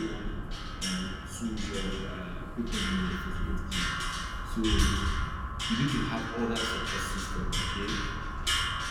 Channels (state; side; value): identical; both; correlation 1.00